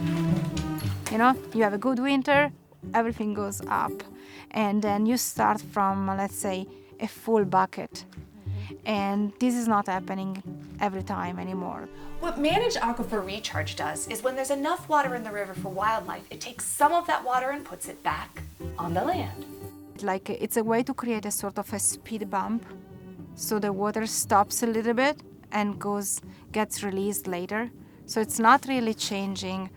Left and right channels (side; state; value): both; identical; correlation 1.00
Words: You know, you have a good winter, everything goes up, and then you start from, let's say, a full bucket. And this is not happening every time anymore. What Managed Aquifer Recharge does is when there's enough water in the river for wildlife, it takes some of that water and puts it back on the land. Like, it's a way to create a sort of a speed bump, so the water stops a little bit and gets released later. So it's not really changing